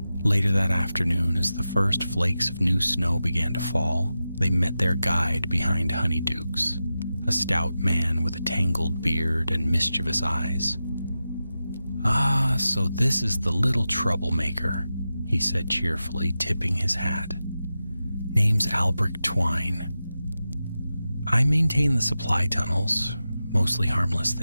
Later that afternoon, as the first flakes of new snow began to fall, they met their guide behind Honeydukes, a stout man with a tangled beard and mischievous eyes. Ah, so this is the little troublemaker, he said cheerfully, tipping his hat. Name's Albrecht Twine. I maintain the supply tunnels, mostly harmless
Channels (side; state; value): both; inverted; correlation -0.92